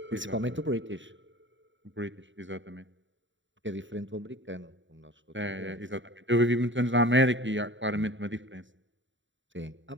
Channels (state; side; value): late; left; 0.54 ms